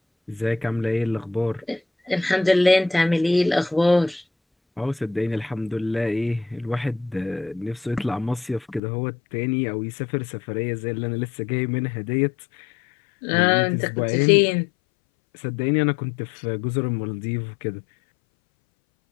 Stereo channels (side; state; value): right; drops out; at 8.8 s